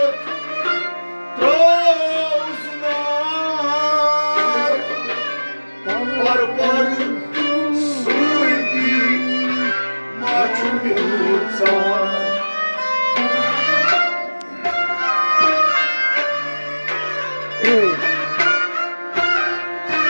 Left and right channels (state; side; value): inverted; both; correlation -1.00